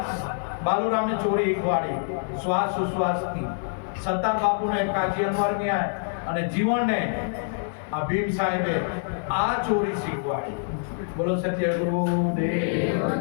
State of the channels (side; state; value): right; silent; digital silence